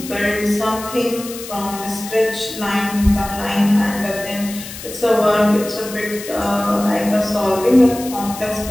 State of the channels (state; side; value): noise; left; hiss, 12 dB below the sound